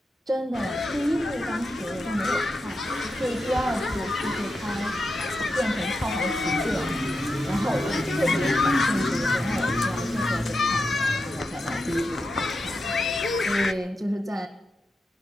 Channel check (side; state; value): both; normal; correlation 0.88